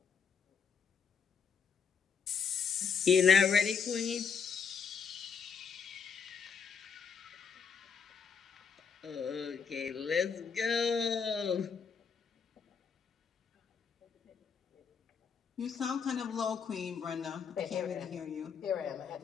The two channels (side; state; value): right; quieter; 6.2 dB